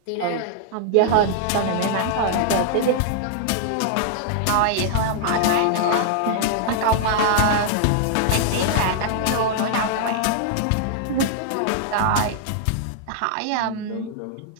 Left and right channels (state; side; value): different; both; correlation 0.00